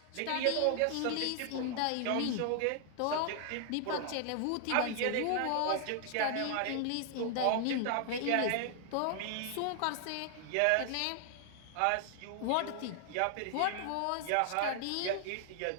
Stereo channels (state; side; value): different; both; correlation 0.00